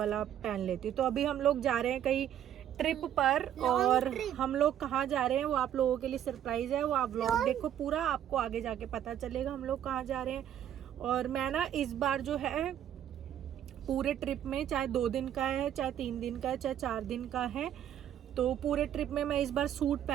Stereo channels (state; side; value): quieter; left; 10.5 dB